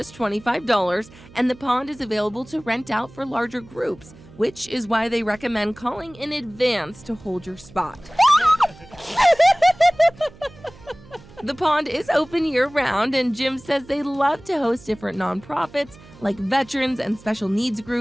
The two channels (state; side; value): noise; right; hum, 22 dB below the sound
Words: $25, and the pond is available to rent out for larger groups, which is why they recommend calling in advance to hold your spot. The pond is open year-round, and Jim says they love to host different nonprofits like veterans and special needs